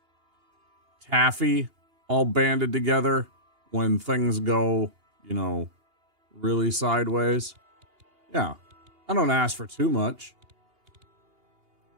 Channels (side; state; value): left; late; 2.8 ms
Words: taffy all banded together when things go, you know, really sideways. Yeah, I don't ask for too much.